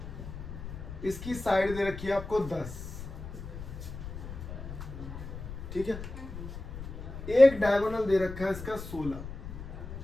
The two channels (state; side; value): noise; left; rumble, 9 dB below the sound